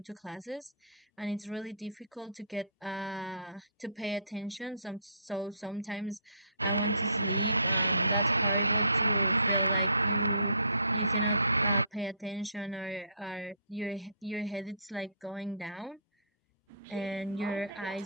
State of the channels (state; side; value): inverted; both; correlation -0.55